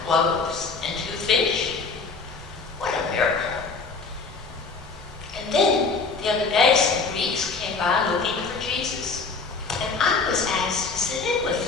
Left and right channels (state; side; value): quieter; right; 4.4 dB